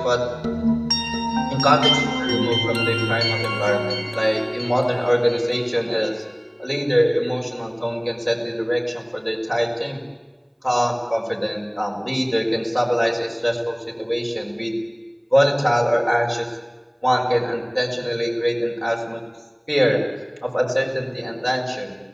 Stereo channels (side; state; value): both; identical; correlation 1.00